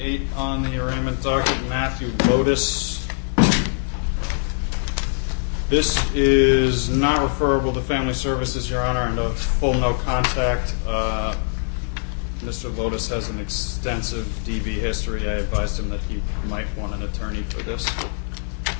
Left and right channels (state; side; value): silent; right; 64 dB below the other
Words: 8 on the arraignment docket, Matthew Lodice. This is not referable to Family Services, Your Honor, and a full no contact. Mr. Lodice has an extensive DV history. I advised him that he might want an attorney for this.